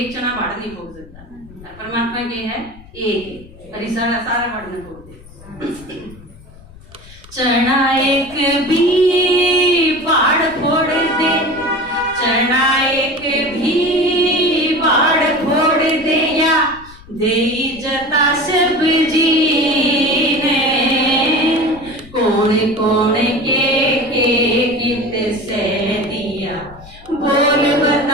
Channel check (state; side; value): noise; left; rumble, 21 dB below the sound